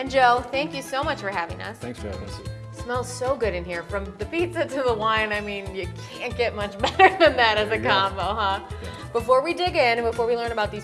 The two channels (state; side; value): identical; both; correlation 1.00